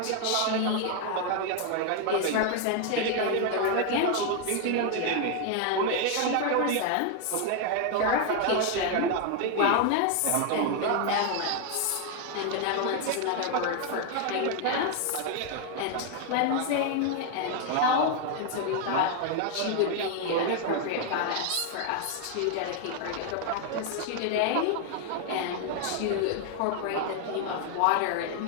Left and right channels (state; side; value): different; both; correlation 0.00